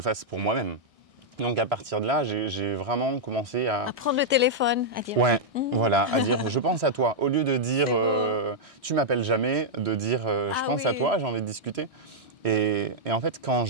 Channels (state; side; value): late; left; 1.6 ms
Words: fasse pour moi-même. Donc à partir de là, j'ai vraiment commencé À prendre le téléphone, à dire. Ouais, voilà, à dire je pense à toi. Au lieu de dire tu m'appelles jamais, de dire je pense à toi, j'ai envie de discuter. Et en fait, quand